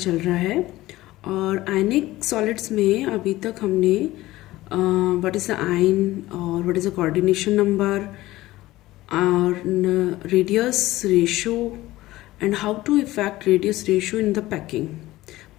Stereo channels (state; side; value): quieter; right; 17.2 dB